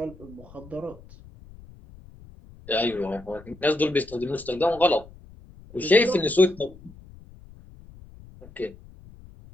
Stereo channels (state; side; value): noise; left; rumble, 21 dB below the sound